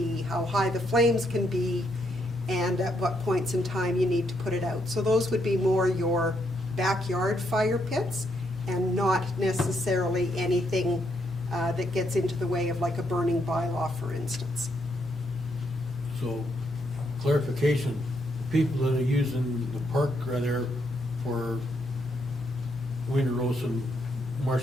how high the flames can be, and at what points in time you need to put it out. So those would be more your backyard fire pits and not necessarily anything that gets into the way of like a burning bylaw, for instance. so clarification, people that are using the park right there for wiener roast and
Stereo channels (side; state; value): left; noise; hum, 22 dB below the sound